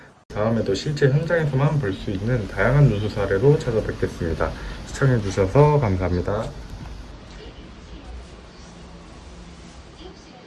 다음에도 실제 현장에서만 볼 수 있는 다양한 누수 사례로 찾아뵙겠습니다. 시청해주셔서 감사합니다.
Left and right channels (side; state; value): both; identical; correlation 1.00